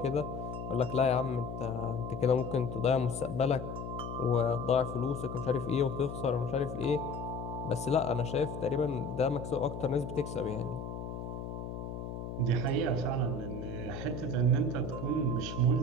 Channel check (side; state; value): left; noise; hum, 7 dB below the sound